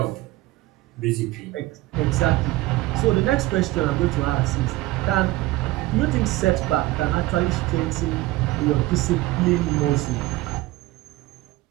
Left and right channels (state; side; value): quieter; left; 18.4 dB